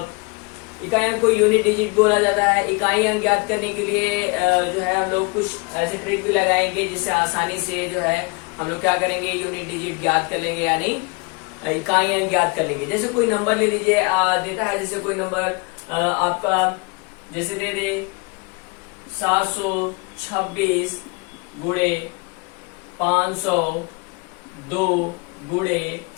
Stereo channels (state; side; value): quieter; right; 29.8 dB